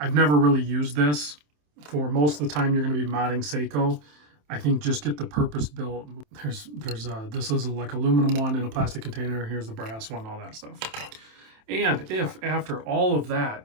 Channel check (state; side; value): late; left; 27 ms